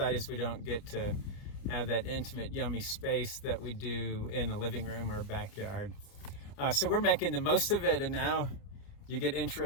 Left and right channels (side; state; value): right; late; 29 ms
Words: is we don't get to have that intimate, yummy space that we do in a living room or a backyard. So we're making the most of it, and now you get